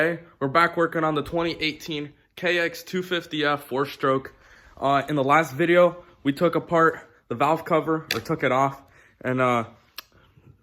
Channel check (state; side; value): identical; both; correlation 1.00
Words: we're back working on the 2018 Kx250F 4-stroke. In the last video we took apart the valve cover, or took it off, and